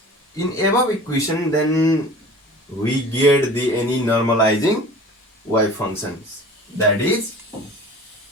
in above equation, then we get the any normalizing wave functions. That is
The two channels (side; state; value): both; normal; correlation 0.42